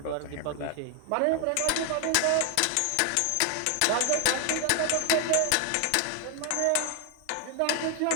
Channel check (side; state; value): both; different; correlation 0.00